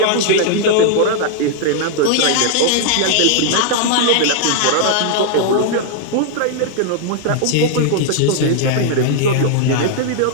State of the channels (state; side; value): different; both; correlation -0.01